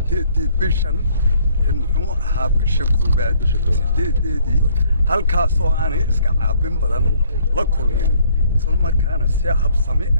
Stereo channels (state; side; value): inverted; both; correlation -0.62